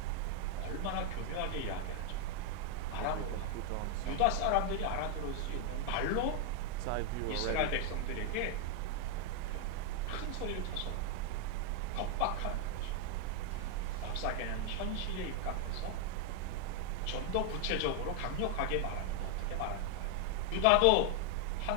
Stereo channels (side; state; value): both; different; correlation 0.00